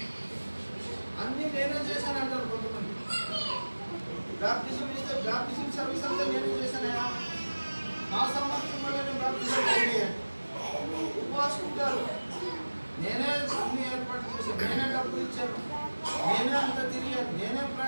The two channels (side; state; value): both; inverted; correlation -1.00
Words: అన్ని నేనే చేశాను అంటారు కొంతమంది. బ్యాప్టిజం ఇస్తే బ్యాప్టిజం సర్వీస్ అంతా నేనే చేశానయా, నా సామర్థ్యం వల్ల నేను బ్యాప్టిజం చేయాలి. ఉపవాసుకుంటారు, నేనే అన్ని ఏర్పాటు చేశాను, నేనే డబ్బులు ఇచ్చాను, నేనే అంత తిరిగాను, నేనే